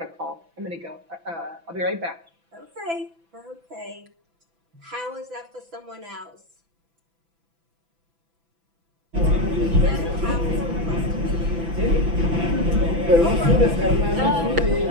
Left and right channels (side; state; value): left; late; 6.0 ms